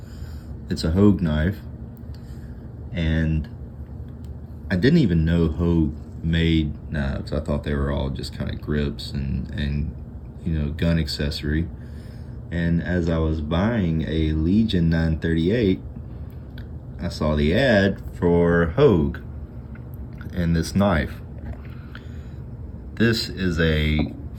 It's a Hogue knife, and I didn't even know Hogue made knives. I thought they were all just kind of grips and gun accessory. And as I was buying a Legion 938, I saw the ad for Hogue and this knife. This is a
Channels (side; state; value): both; identical; correlation 1.00